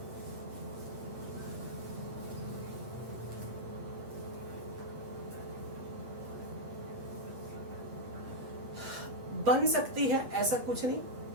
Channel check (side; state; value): left; late; 8.5 ms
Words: बन सकती है, ऐसा कुछ नहीं,